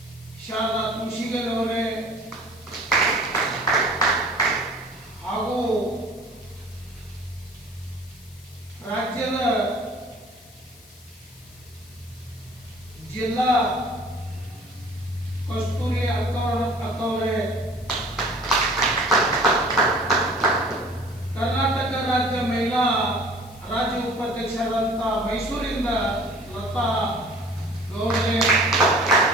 ಶಾರದಾ ಕೃಷಿಗರವರೇ ಹಾಗೂ ರಾಜ್ಯದ ಜಿಲ್ಲಾ ಕಸ್ತೂರಿ ಅಕ್ಕವರೇ, ಕರ್ನಾಟಕ ರಾಜ್ಯ ಮಹಿಳಾ ರಾಜ್ಯ ಉಪಾಧ್ಯಕ್ಷರಾದಂಥ ಮೈಸೂರಿಂದ ಲತಾ ಗೌಡ್ರೆ,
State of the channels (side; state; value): left; noise; hiss, 23 dB below the sound